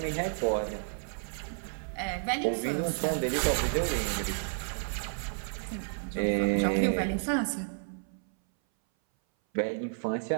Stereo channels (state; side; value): silent; left; 57 dB below the other